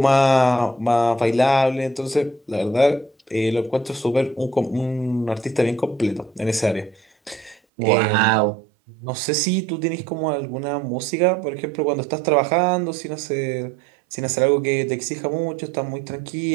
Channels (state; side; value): drops out; left; at 7.6 s